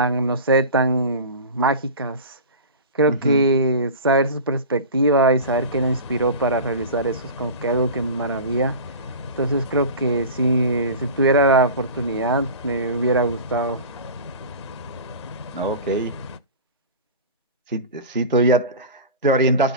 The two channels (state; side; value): inverted; both; correlation -0.33